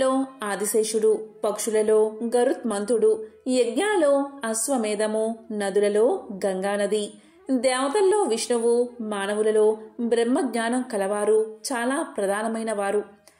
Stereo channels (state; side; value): identical; both; correlation 1.00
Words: ఆదిశేషుడు, పక్షులలో గరుత్మంతుడు, యజ్ఞాలలో అశ్వమేధము, నదులలో గంగానది, దేవతల్లో విష్ణువు, మానవులలో బ్రహ్మజ్ఞానం కలవారు చాలా ప్రధానమైన వారు.